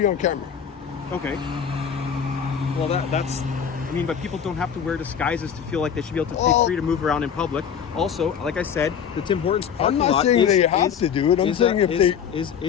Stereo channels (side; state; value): right; quieter; 7.7 dB